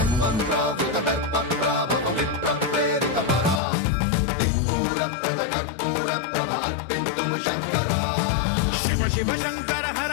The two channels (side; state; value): right; drops out; at 3.6 s